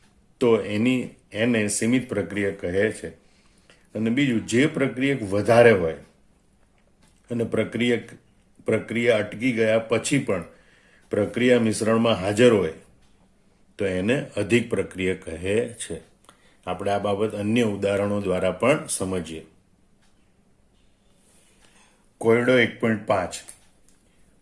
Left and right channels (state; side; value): identical; both; correlation 1.00